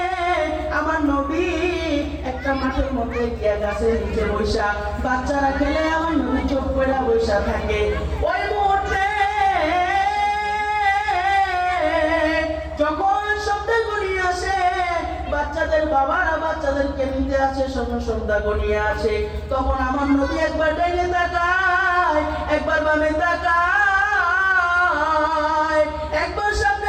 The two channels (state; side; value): identical; both; correlation 1.00